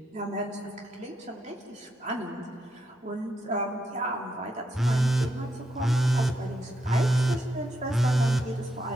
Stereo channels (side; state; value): both; normal; correlation 0.80